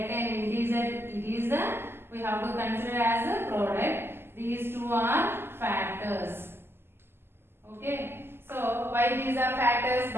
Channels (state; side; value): late; left; 0.11 ms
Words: an integer. It is we have to consider as a product. These two are factors. Okay. So why these are factors?